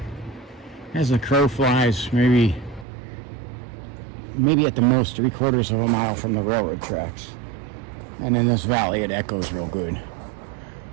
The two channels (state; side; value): drops out; left; at 2.9 s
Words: as the crow flies, maybe at the most 3/4 of a mile from the railroad tracks. And in this valley, it echoes real good.